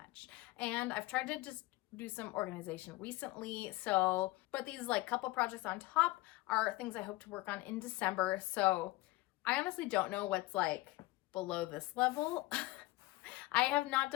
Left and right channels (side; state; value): right; quieter; 20.0 dB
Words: And I've tried to just do some organization recently. So, but these like couple projects on top are things I hope to work on in December. So I honestly don't know what's like below this level. I have not